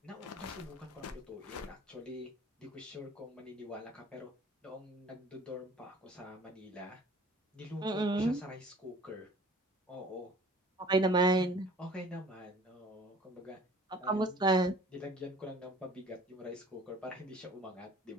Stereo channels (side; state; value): both; normal; correlation 0.49